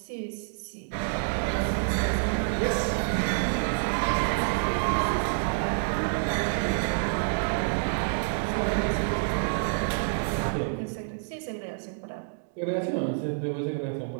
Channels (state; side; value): silent; left; digital silence